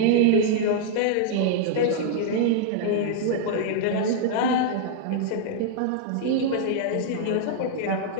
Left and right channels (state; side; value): different; both; correlation 0.00